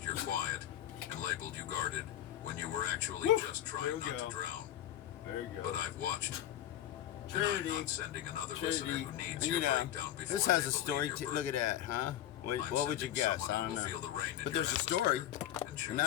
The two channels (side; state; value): right; quieter; 12.1 dB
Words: your quiet, and labeled you guarded when you were actually Woo. just There trying we not go. to drown. There you But I've watched. And Trinity. I'm not sending another listener Trinity. who needs You your know, breakdown before this has they a believe story. your Look burden. at that, huh? What I'm would you sending guess? someone I who don't will know. feel the rain in But your there's a story. atmosphere and choose